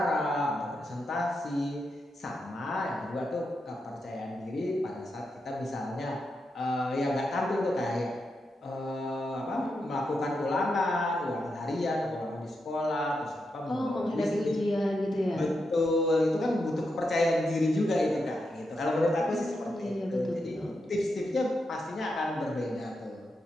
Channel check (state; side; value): normal; both; correlation 0.85